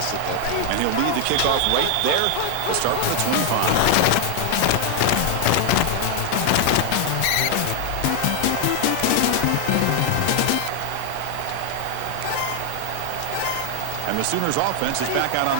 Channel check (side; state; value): both; different; correlation 0.00